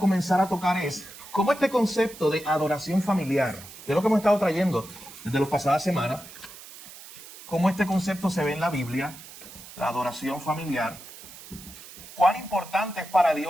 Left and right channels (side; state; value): right; noise; hiss, 17 dB below the sound